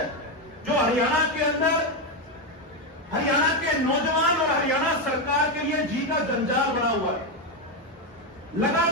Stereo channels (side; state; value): both; normal; correlation 0.08